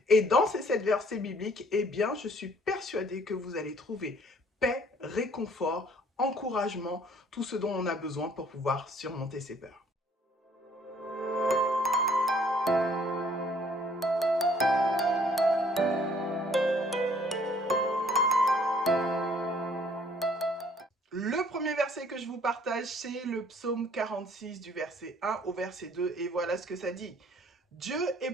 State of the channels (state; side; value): normal; both; correlation 0.59